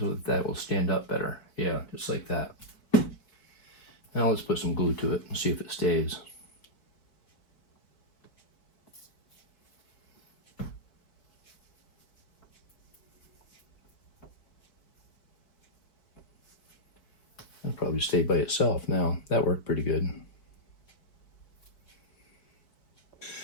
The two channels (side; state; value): right; late; 4.6 ms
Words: that will stand up better. Yeah, just like that. Now let's put some glue to it and see if it stays. It'll probably stay by itself now. That worked pretty good.